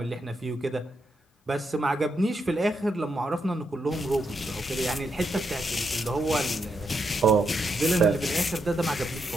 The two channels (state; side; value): normal; both; correlation 0.81